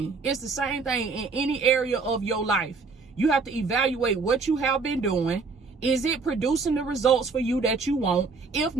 It's the same thing in any area of your life. You have to evaluate what you have been doing. Is it producing the results for you that you want? If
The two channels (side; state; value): left; quieter; 4.4 dB